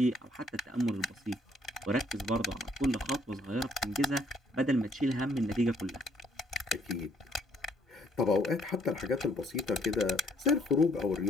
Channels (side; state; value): both; normal; correlation 0.66